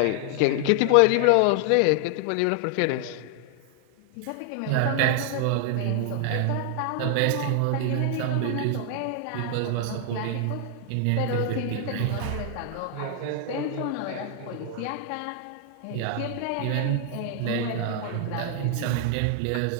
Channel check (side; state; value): both; different; correlation 0.00